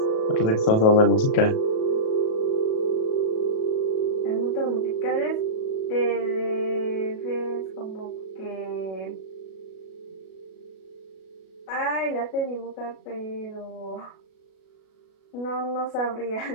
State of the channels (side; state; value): right; late; 37 ms